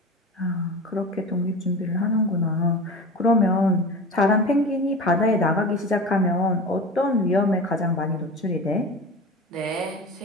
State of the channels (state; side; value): normal; both; correlation 0.32